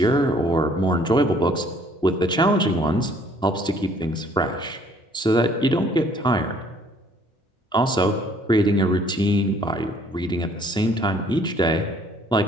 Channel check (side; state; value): both; normal; correlation 0.60